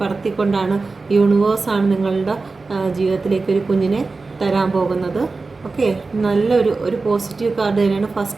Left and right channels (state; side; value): quieter; left; 3.9 dB